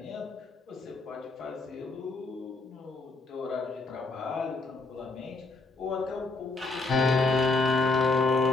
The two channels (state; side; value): quieter; right; 3.5 dB